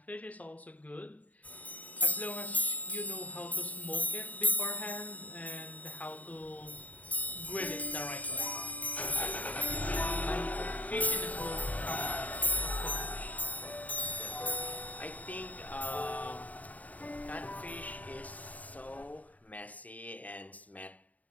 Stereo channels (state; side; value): late; right; 0.072 ms